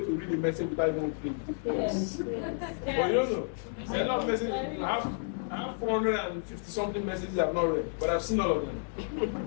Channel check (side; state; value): right; silent; 57 dB below the other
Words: to read a message without even opening it? Yes. But you don't know. There's a lot of messages. I have 450 something messages I've not read, but I've seen all of